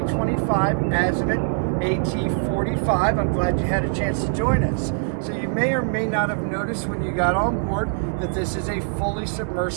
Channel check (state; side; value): silent; left; digital silence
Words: Azimut AT45. I'm glad you had a chance to join us. So you may or may not have noticed when you got on board that this is a fully